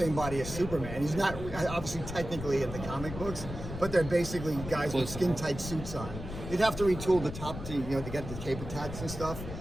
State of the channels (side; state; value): left; noise; rumble, 9 dB below the sound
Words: body as Superman. He's not obviously technically in the comic books, but they're basically guys with skin-tight suits on. You'd have to retool the top to get the cape attached and stuff.